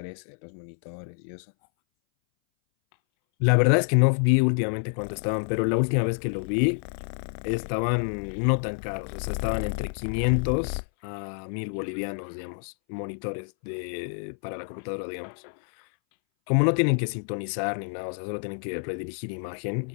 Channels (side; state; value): right; silent; 60 dB below the other